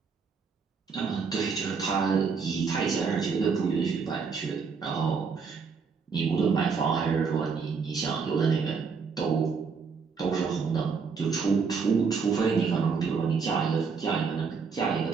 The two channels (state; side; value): quieter; left; 5.4 dB